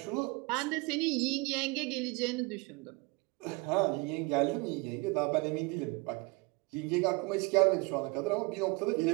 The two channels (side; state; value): left; quieter; 26.4 dB